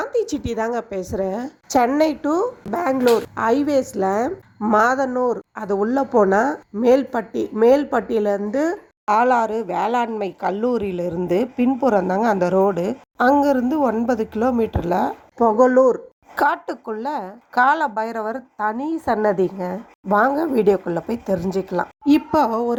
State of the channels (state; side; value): identical; both; correlation 1.00